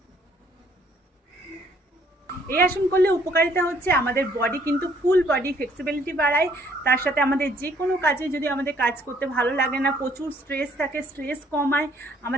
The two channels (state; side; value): normal; both; correlation 0.64